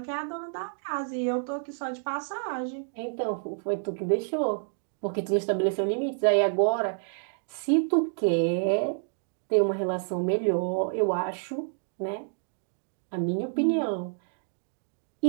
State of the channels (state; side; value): silent; left; digital silence